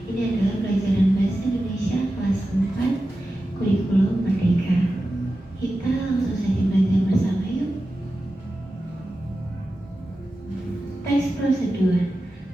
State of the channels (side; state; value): both; normal; correlation 0.93